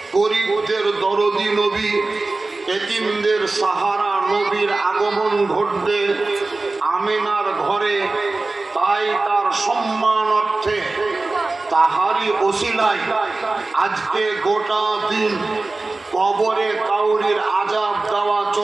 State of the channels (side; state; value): left; quieter; 3.3 dB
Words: গরীবদের দরদি নবী, এতিমদের সাহারা নবীর আগমন ঘটবে আমিনার ঘরে। তাই তার সম্মান অর্থে, তাহারি ওসিলায় আজকে গোটা দিন কবরে কাউরির আযাব দেওয়া